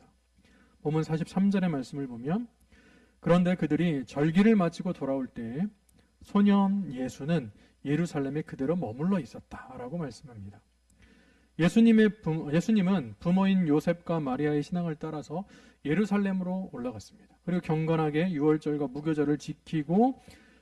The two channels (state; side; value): identical; both; correlation 1.00